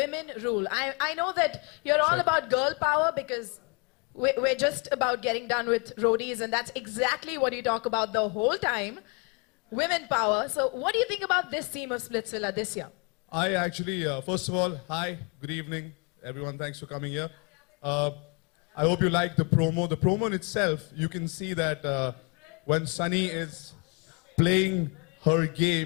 rule? I know that you're all about girl power because we're just about getting done with roadies, and that's exactly what you talk about the whole time, women power. So what do you think about this theme of Splitsvilla this year? I actually, first of all, hi, good evening, everyone. Thanks for coming here. I hope you like the promo. The promo in itself, you can see that when Sunny is playing her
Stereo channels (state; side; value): quieter; right; 34.3 dB